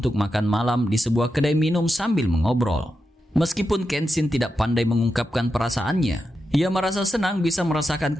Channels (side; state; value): both; normal; correlation 0.88